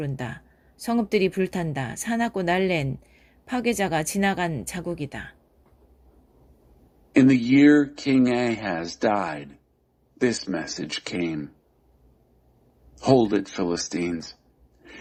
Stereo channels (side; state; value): both; identical; correlation 1.00